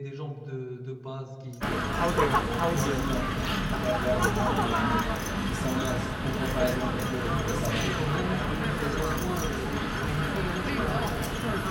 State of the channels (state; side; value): identical; both; correlation 1.00